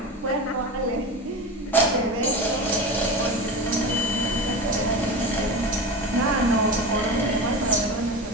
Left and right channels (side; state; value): both; normal; correlation 0.26